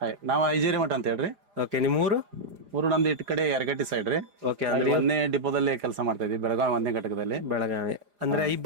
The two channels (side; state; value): left; late; 4.9 ms